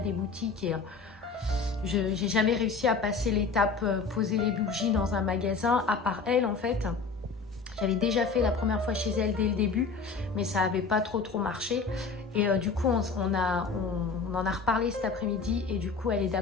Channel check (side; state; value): right; quieter; 4.7 dB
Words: boutiques et j'ai jamais réussi à passer l'étape poser les bougies dans un magasin, à part elle en fait. J'avais déjà fait la première fois chez elle dès le début, mais ça n'avait pas trop marché. Et du coup, on en a reparlé cet après-midi et du coup, elle est